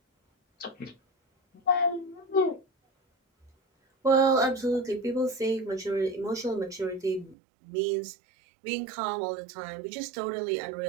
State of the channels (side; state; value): left; drops out; at 7.4 s